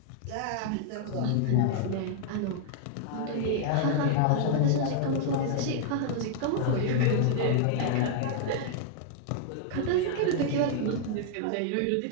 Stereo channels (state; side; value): different; both; correlation -0.01